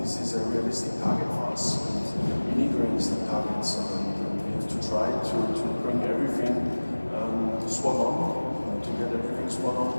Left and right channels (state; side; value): inverted; both; correlation -1.00